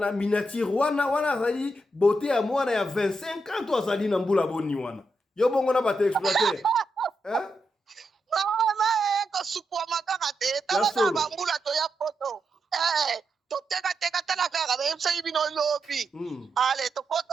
miniature wana zali beauté ya mwana ya 25 ans to azali na mbula boni wana. Yo bongo na bate exploiter. Hein? Mama ko supwa makaka te. Tala ba mbula to ya poto. Teka tala kaka be msa ibino lobi. Ale to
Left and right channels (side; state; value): both; normal; correlation 0.84